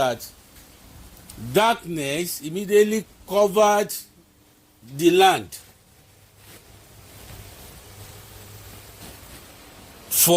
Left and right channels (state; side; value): identical; both; correlation 1.00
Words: darkness immediately covered the land